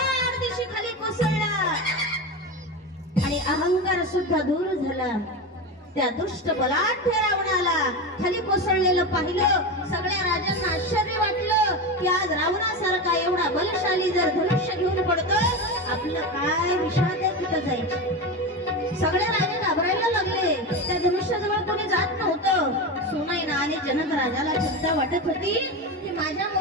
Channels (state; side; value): normal; both; correlation 0.21